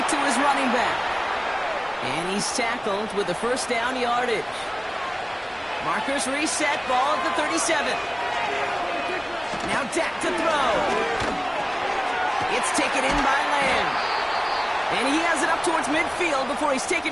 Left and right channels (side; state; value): both; identical; correlation 1.00